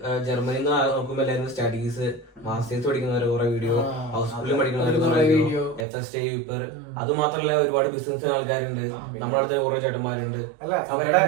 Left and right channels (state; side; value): drops out; left; at 5.9 s